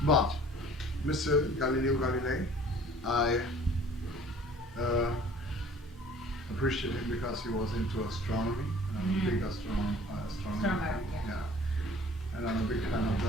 But Mr. Galileo Galilei, I appreciate him because he was into astronomy. And I'm a big astronomer. Astronomer, yeah. And I'm a big fan of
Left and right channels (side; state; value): both; normal; correlation 0.50